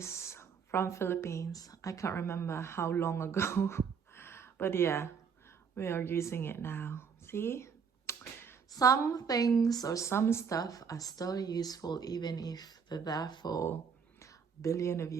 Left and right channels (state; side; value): quieter; left; 6.4 dB